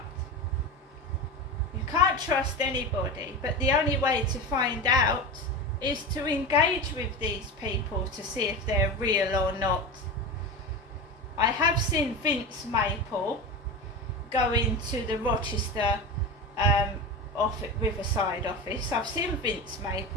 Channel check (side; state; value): both; normal; correlation 0.25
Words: You can't trust anybody, but the only way to find out is to engage with these people to see if they're real or not. I have seen Vince Maple go into the Rochester Riverside office. I've seen Vince